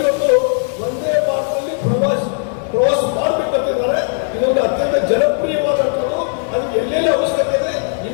ಇವತ್ತು ಒಂದೇ ಭಾರತದಲ್ಲಿ ಪ್ರವಾಸ ಮಾಡಬೇಕಂತಿದ್ದಾರೆ. ಇದೊಂದು ಅತ್ಯಂತ ಜನಪ್ರಿಯವಾದಂಥದ್ದು. ಅದಕ್ಕೆ ಎಲ್ಲೆಲ್ಲ ಅವಶ್ಯಕತೆ ಇದೆ,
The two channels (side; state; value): right; silent; digital silence